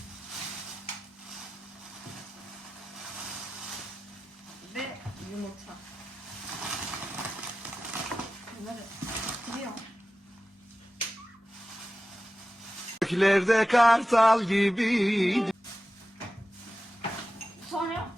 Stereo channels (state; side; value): normal; both; correlation 0.94